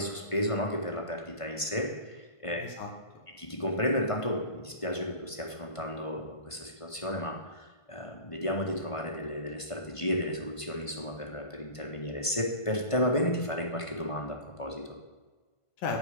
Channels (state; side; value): late; right; 1.5 ms